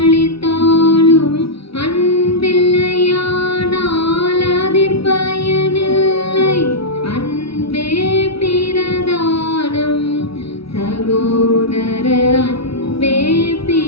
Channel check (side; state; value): right; late; 0.76 ms